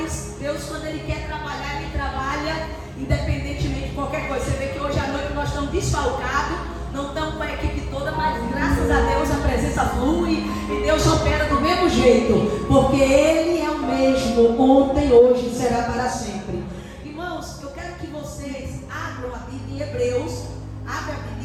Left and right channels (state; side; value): identical; both; correlation 1.00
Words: Deus, quando Ele quer trabalhar, Ele trabalha independentemente de qualquer coisa. Você vê que hoje à noite nós estamos desfalcados, não estamos com a equipe toda, mas graças a Deus a presença flui e Deus opera do mesmo jeito, porque Ele é o mesmo, ontem, hoje e será para sempre. Irmãos, eu quero que vocês abram a Bíblia em Hebreus. Abre a